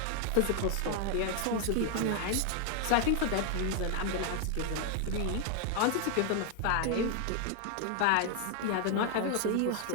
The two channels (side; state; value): both; different; correlation 0.00